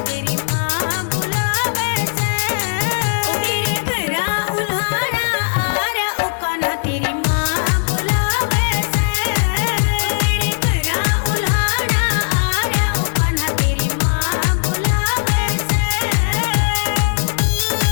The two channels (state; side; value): silent; right; digital silence